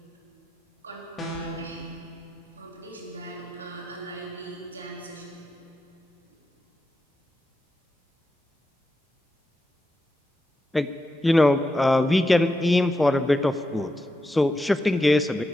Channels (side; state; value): both; normal; correlation 0.87